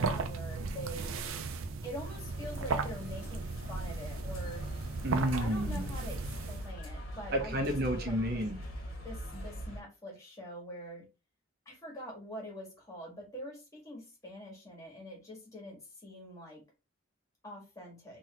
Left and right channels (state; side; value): normal; both; correlation 0.47